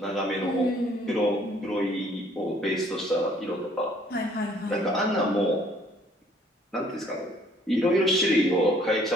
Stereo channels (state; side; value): normal; both; correlation 0.60